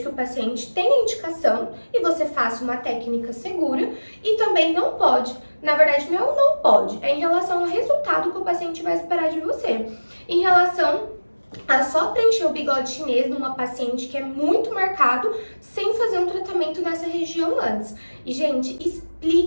que o paciente tenha indicação e você faça uma técnica segura, e também não pode. Na verdade, não pode, é em relação ao resultado que o paciente vai esperar de você. Em relação a só preencher o bigode chinês numa paciente que é muito marcado, sem fazer um tratamento nessa região antes. E, gente,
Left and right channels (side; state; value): both; inverted; correlation -1.00